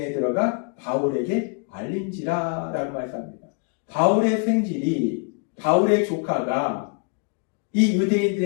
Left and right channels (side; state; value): right; quieter; 38.3 dB